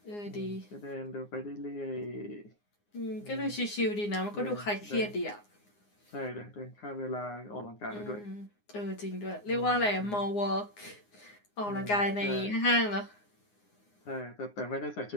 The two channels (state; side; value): late; right; 9.7 ms